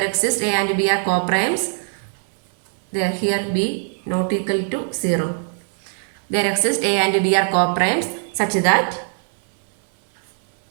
exists a and b are coprimes. There here b not equal to 0. There exists a and b are coprimes such that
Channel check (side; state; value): left; silent; 64 dB below the other